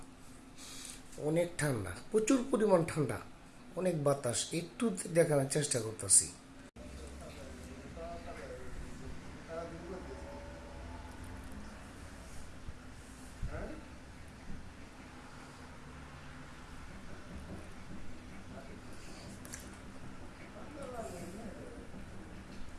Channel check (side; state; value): both; identical; correlation 1.00